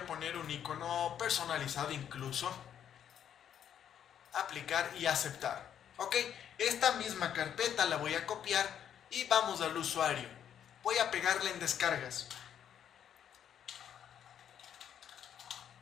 poner un icono personalizado incluso. Aplicar y aceptar. Ok, esta misma carpeta la voy a copiar y vamos al usuario. Voy a pegarla en descargas.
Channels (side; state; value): right; quieter; 9.3 dB